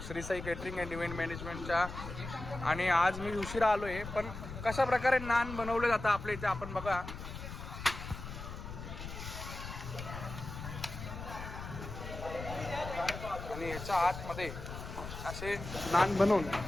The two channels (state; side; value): noise; left; rumble, 9 dB below the sound